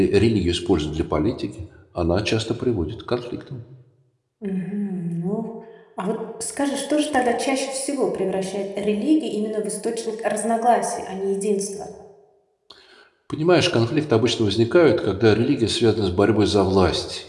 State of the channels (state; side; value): identical; both; correlation 1.00